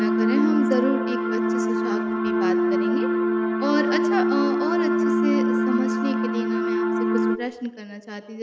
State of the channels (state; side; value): identical; both; correlation 1.00